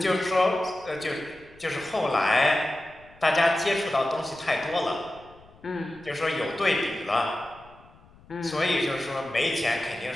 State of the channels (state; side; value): noise; left; rumble, 26 dB below the sound